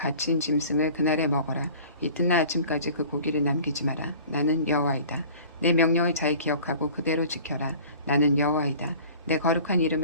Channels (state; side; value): inverted; both; correlation -0.45